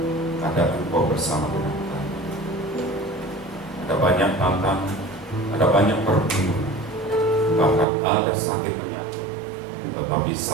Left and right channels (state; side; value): drops out; left; at 7.9 s